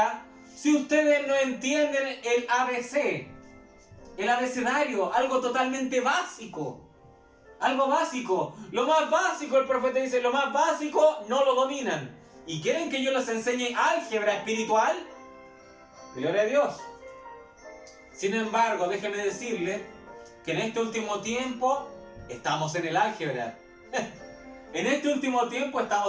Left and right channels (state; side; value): identical; both; correlation 1.00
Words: si ustedes no entienden el ABC? El abecedario, algo totalmente básico. Algo básico. Lo más básico, el profeta dice, lo más básico no lo dominan. ¿Y quieren que yo les enseñe álgebra espiritual? Gloria a Dios. Sin embargo, déjeme decirle que en este último tiempo estamos en el álgebra. En este último tiempo